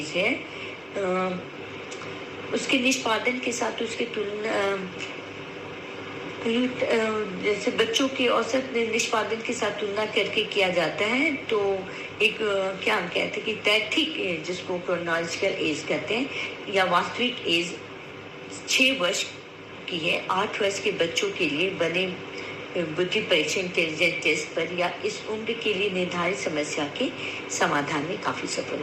है उसके निष्पादन के साथ उसके तुलना जैसे बच्चों के औसत निष्पादन के साथ तुलना करके किया जाता है। तो एक क्या हम कहते हैं कि तैथिक एज जिसको क्रोनोलॉजिकल एज कहते हैं या वास्तविक एज 6 वर्ष की है। 8 वर्ष के बच्चों के लिए बने बुद्धि परीक्षण इंटेलिजेंस टेस्ट पर या इस उम्र के लिए निर्धारित समस्या के समाधान में काफी सफल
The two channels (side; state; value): both; identical; correlation 1.00